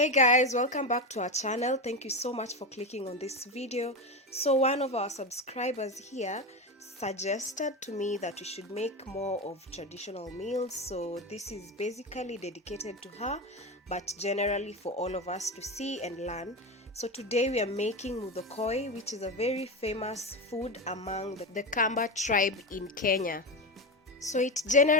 guys, welcome back to our channel. Thank you so much for clicking on this video. So one of our subscribers here suggested to me that we should make more of traditional meals, so this is basically dedicated to her, but generally for all of us to see and learn. So today we are making MUTHOKØI, which is a very famous food among the Kamba tribe in Kenya. So it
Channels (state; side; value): normal; both; correlation 0.18